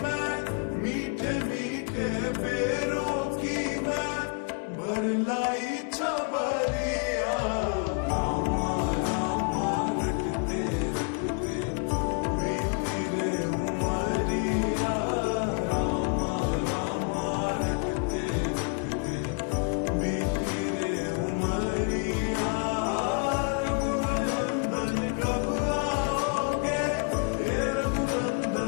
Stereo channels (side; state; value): right; quieter; 35.1 dB